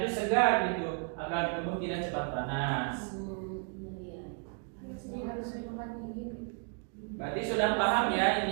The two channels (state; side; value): quieter; left; 37.8 dB